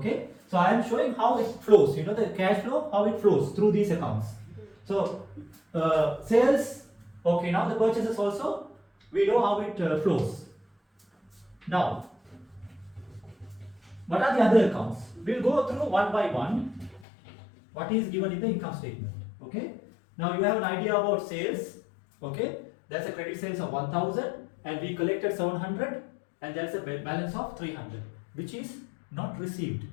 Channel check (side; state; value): right; drops out; at 17.1 s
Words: So I am showing how it flows. You know the cash flow, how it flows through these accounts. So sales. Okay. Now the purchases also, we know how it flows. Now, what are the other accounts? We'll go through one by one. What is given in the income statement? Okay. Now you have an idea about sales. Okay. That's a credit sales of 1000 and we collected 700 and there's a balance of 300 which is not received.